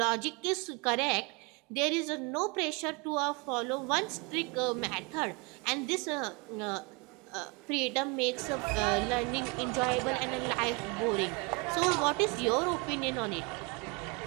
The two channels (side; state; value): left; quieter; 29.3 dB